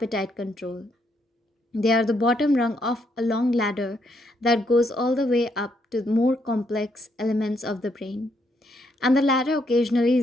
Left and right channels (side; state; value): both; normal; correlation 0.75